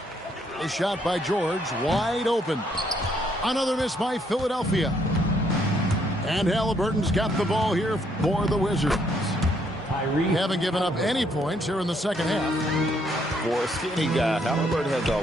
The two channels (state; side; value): normal; both; correlation 0.70